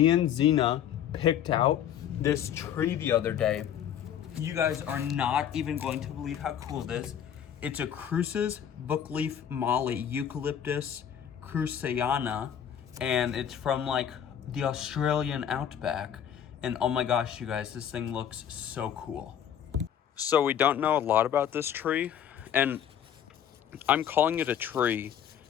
and Zena picked out this tree the other day. You guys are not even going to believe how cool it is. It's a Cruce's Bookleaf Mallee Eucalyptus cruceana, and it's from like the Australian outback. And oh my gosh, you guys, this thing looks so cool. So we don't know a lot about this tree, and I'm calling it a tree.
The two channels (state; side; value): quieter; right; 9.4 dB